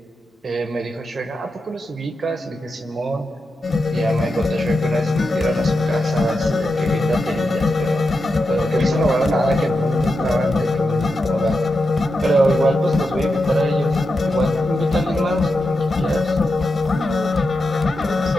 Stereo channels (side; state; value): both; normal; correlation 0.88